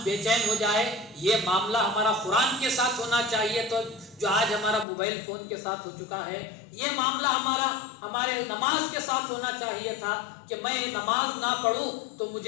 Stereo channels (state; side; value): drops out; right; at 4.9 s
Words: بے چین ہو جائے۔ یہ معاملہ ہمارا قرآن کے ساتھ ہونا چاہیے تو جو آج ہمارا موبائل فون کے ساتھ ہو چکا ہے۔ یہ معاملہ ہمارے نماز کے ساتھ ہونا چاہیے تھا کہ میں نماز نہ پڑھوں تو